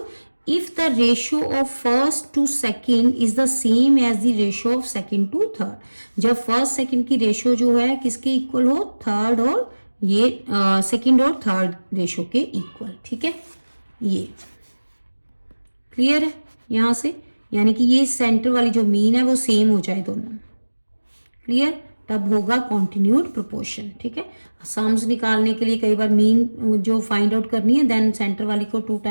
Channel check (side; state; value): both; inverted; correlation -1.00